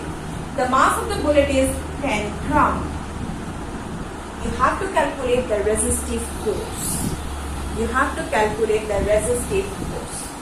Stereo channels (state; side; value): identical; both; correlation 1.00